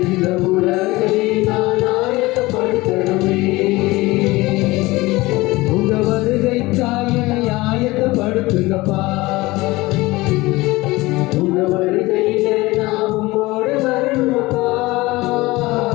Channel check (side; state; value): right; quieter; 20.6 dB